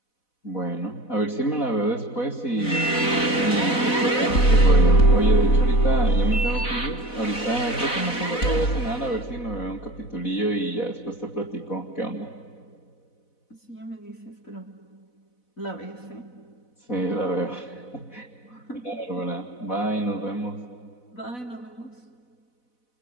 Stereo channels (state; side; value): late; right; 4.0 ms